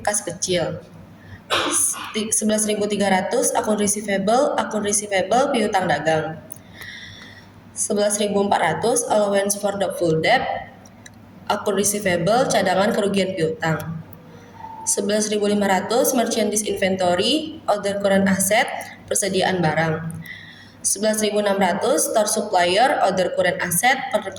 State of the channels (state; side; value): identical; both; correlation 1.00